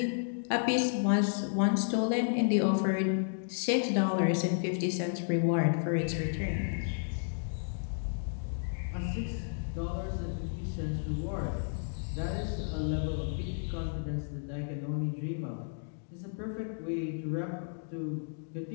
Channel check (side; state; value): right; silent; digital silence